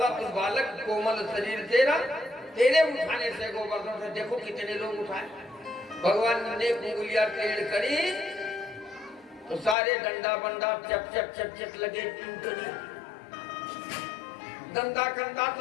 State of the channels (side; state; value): right; drops out; at 9.8 s